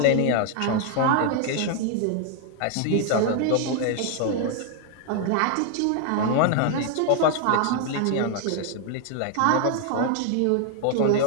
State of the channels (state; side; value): different; both; correlation 0.00